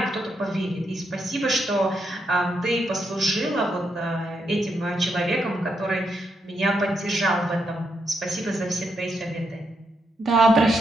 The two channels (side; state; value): both; normal; correlation 0.81